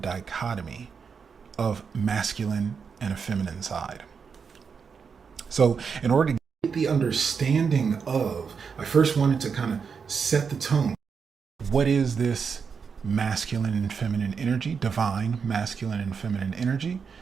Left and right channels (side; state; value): left; quieter; 6.0 dB